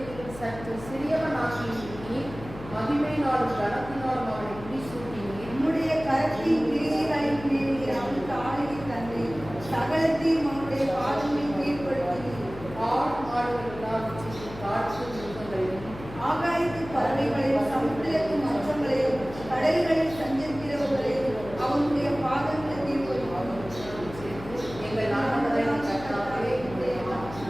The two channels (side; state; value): left; noise; hum, 14 dB below the sound